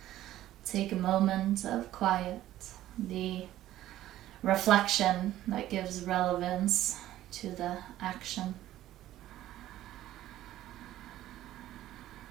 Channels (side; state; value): left; quieter; 13.8 dB